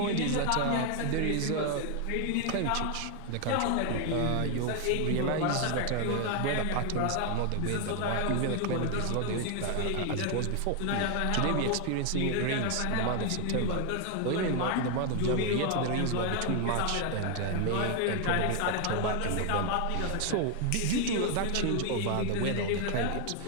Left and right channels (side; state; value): both; different; correlation 0.00